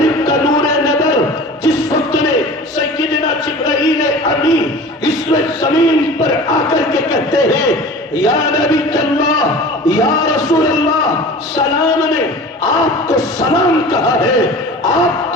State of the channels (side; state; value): both; normal; correlation 0.39